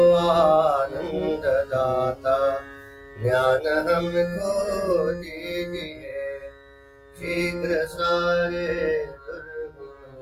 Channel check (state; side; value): identical; both; correlation 1.00